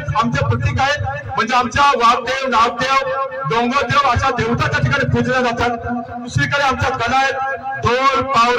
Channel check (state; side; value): identical; both; correlation 1.00